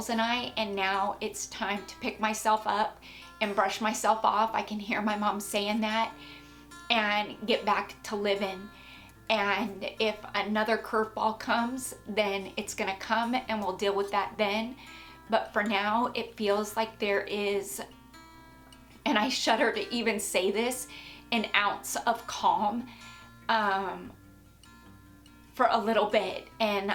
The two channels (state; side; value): identical; both; correlation 1.00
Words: and I, and now it's time to pick myself up and brush myself off. I can hear my mom saying that, and get back to living. And if another curveball comes, then it's gonna come and we'll deal with that then. But for now, it feels like there is, and I shudder to even say this, an ounce of calm for a little bit, and